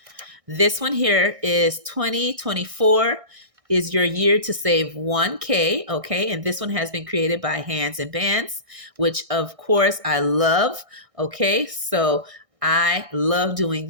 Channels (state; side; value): late; left; 1.6 ms